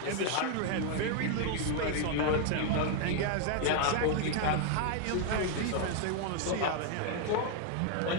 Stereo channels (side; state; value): both; different; correlation 0.00